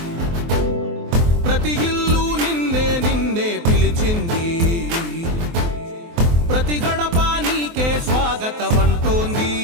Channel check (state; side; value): late; left; 24 ms